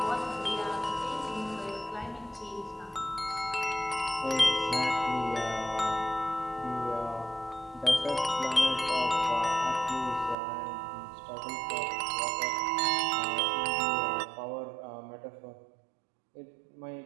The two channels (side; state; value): left; drops out; at 10.4 s